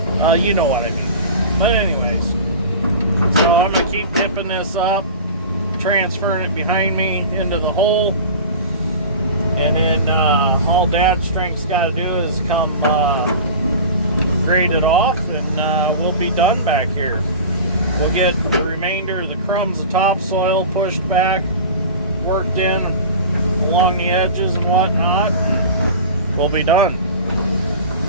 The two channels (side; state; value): both; inverted; correlation -0.35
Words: you know what I mean. But anyways, so I'm going to keep dipping this up, transferring it behind me into the hole. And then all Dad's strength's got to do is come grade it off, and we'll be done back here. We'll get the remainder of the crumbs of topsoil pushed back, worked in along the edges and whatnot. We'll be done.